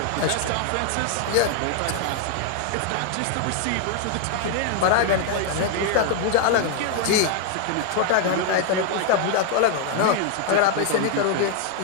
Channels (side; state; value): both; different; correlation 0.00